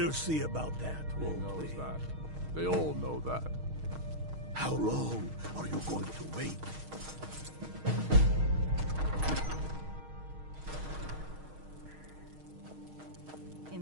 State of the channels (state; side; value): late; left; 6.4 ms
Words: see about that, won't we? That. They all know that. How long are you going to wait?